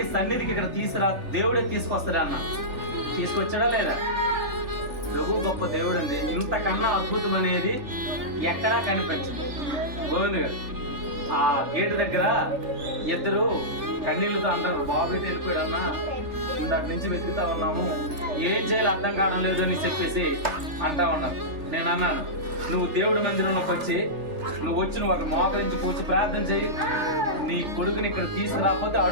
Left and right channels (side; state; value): left; late; 3.4 ms